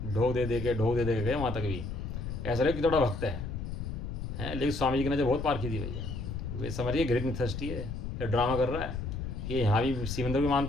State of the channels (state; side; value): noise; left; rumble, 5 dB below the sound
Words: ढोक दे के गए वहाँ तक भी। ऐसा लगे कि थोड़ा भक्त है, लेकिन स्वामी जी की नजर बहुत पारखी थी भैया। वे समझिए ग्रेट मिथस्टी है, ये ड्रामा कर रहा है, ये यहाँ भी श्रीमंदर भी